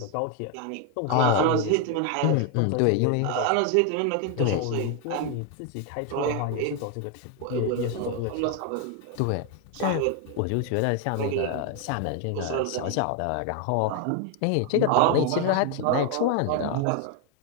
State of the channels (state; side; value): different; both; correlation 0.01